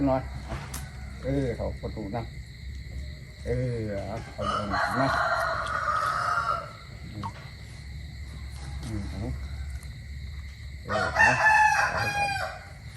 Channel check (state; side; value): identical; both; correlation 1.00